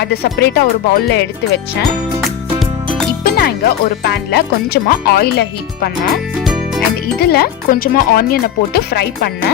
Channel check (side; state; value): right; quieter; 9.6 dB